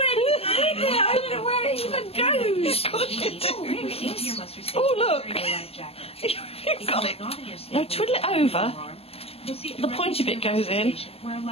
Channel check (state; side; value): late; right; 0.29 ms